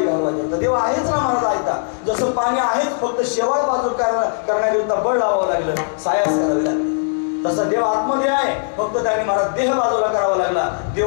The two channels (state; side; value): silent; right; digital silence